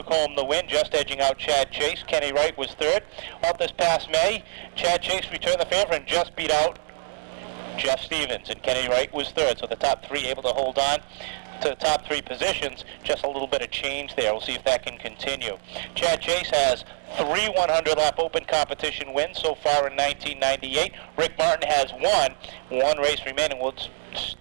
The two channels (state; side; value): silent; left; digital silence